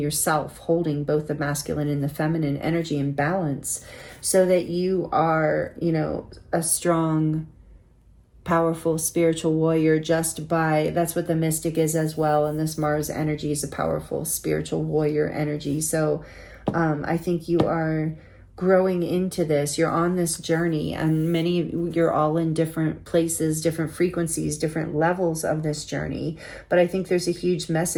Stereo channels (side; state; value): both; identical; correlation 1.00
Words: holding both the masculine and the feminine energy in balance, so that you are, a strong, powerful spiritual warrior that's what the mystic is as well. And this Mars energy is a powerful spiritual warrior energy. So I think you are growing into this. You're on this journey, and you're all in different places, different frequencies, different levels of this journey. But I think there's a huge